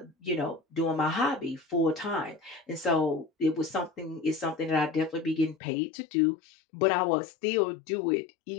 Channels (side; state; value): right; drops out; at 5.6 s